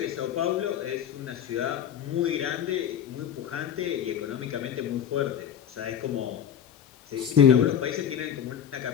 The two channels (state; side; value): quieter; right; 9.1 dB